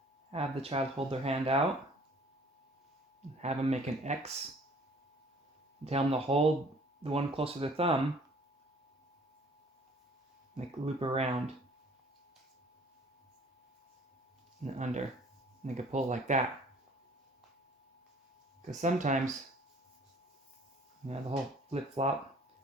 have the child hold their hand out, have them make an X, tell them to hold the one closer to the thumb, make a loop around and under, and they can pull like that. Because sometimes, the whole flip-flop,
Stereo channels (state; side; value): normal; both; correlation 0.54